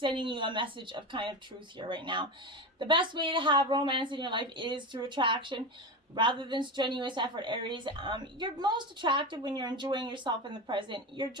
you a message of kind of truth here right now. The best way to have romance in your life is through attraction rather than strenuous effort, Aries. You're most attractive when you're enjoying yourself in the present. Your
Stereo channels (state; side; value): normal; both; correlation 0.21